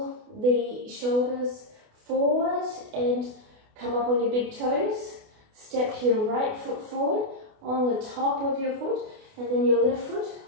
the shoulders forward and come up on your big toes. Step your right foot forward on the top of your foot, and then your left foot,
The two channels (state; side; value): late; left; 28 ms